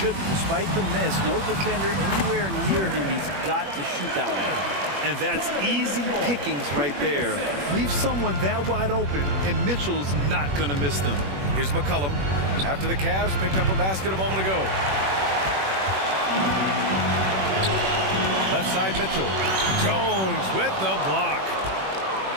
Despite the miss, no defender anywhere near him. He's got to shoot that one. And that's easy pickings right there. Leave someone that wide open, and Mitchell's not going to miss them. Here's McCollum. After the Cavs picked up a basket a moment ago. Left side, Mitchell. Jones with the block.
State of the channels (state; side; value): late; left; 21 ms